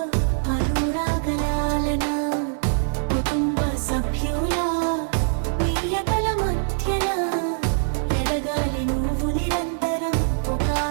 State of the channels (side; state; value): left; silent; digital silence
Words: అనురాగలాలన కుటుంబ సభ్యుల ప్రియతల మధ్యన ఎదగాలి నువ్వు నిరంతరం ఒక